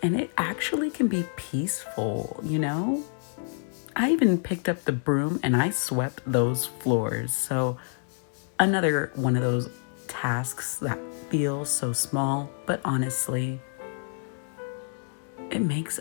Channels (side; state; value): right; silent; 60 dB below the other